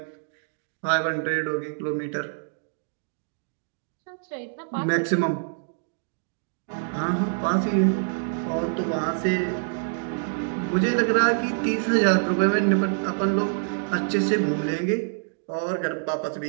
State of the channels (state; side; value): silent; left; digital silence